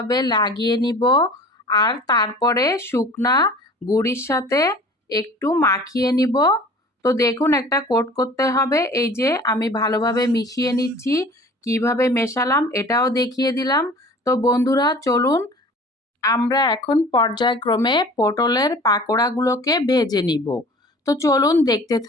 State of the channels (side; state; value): both; normal; correlation 0.45